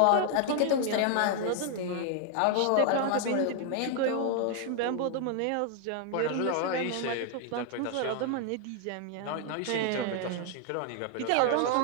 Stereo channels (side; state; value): both; different; correlation 0.00